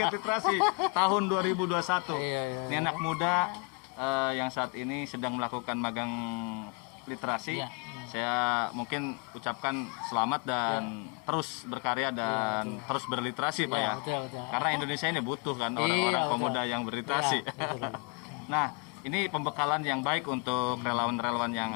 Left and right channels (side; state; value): right; quieter; 32.5 dB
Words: literasi tahun 2021. Iya. Ini anak muda yang saat ini sedang melakukan magang literasi. Iya. Saya mungkin ucapkan selamat dan terus berkarya dan terus berliterasi, Pak Iya, ya. betul. Karena Indonesia ini butuh kan orang-orang Iya, pemuda yang berliterasi. Iya, betul. Nah, ini pembekalan yang baik untuk relawan-relawan yang